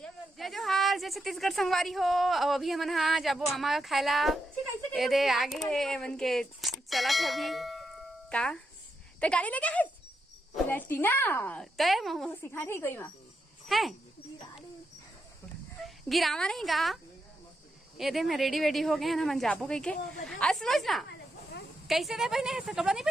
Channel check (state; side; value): normal; both; correlation 0.83